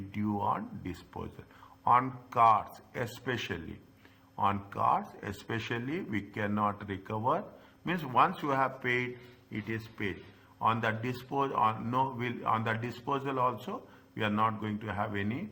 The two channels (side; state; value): both; identical; correlation 1.00